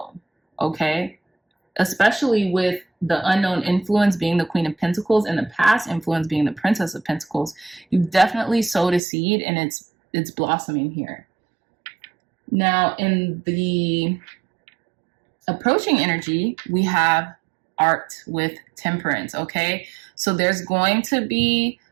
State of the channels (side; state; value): left; drops out; at 9.0 s